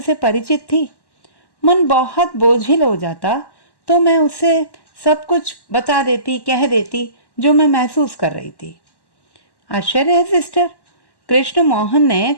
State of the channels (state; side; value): late; right; 1.1 ms